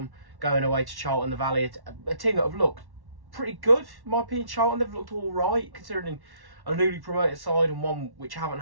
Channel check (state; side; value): late; left; 1.1 ms